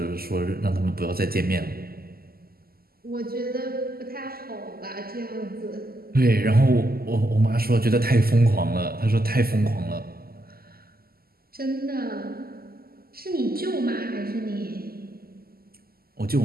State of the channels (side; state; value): left; late; 0.44 ms